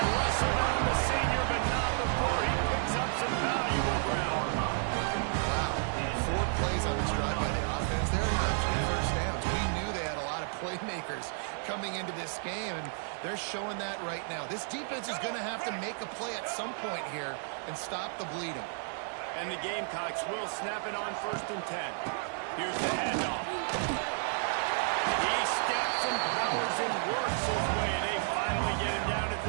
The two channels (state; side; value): silent; left; 56 dB below the other